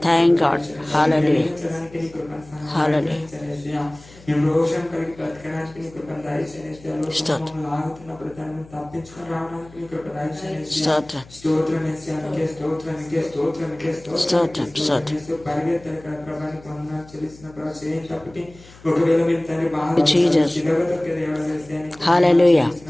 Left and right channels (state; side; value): noise; left; hum, 23 dB below the sound